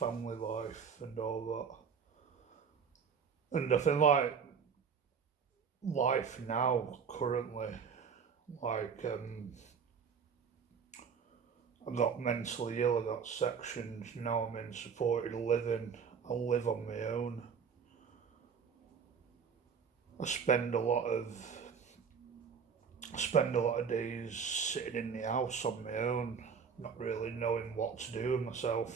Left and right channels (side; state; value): left; quieter; 6.4 dB